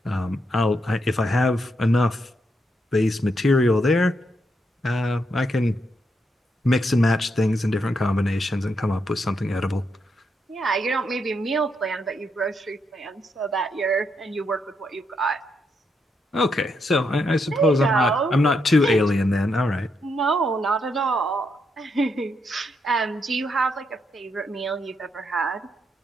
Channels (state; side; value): normal; both; correlation 0.80